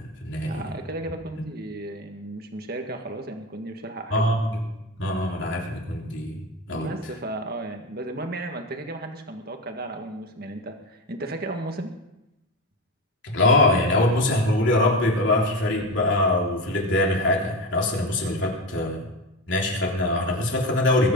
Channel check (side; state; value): both; normal; correlation 0.21